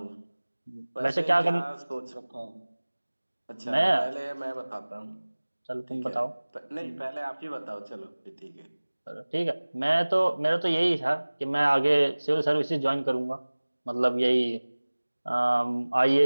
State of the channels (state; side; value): inverted; both; correlation -1.00